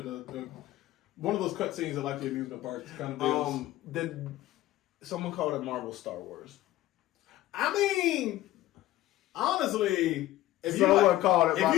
one of those cutscenes at the amusement parks kind of deals. Someone called it Marvel Star Wars. I mean, honestly, if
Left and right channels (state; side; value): quieter; right; 15.4 dB